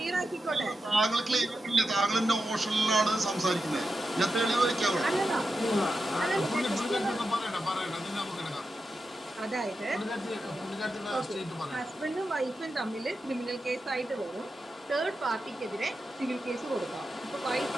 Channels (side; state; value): both; normal; correlation 0.90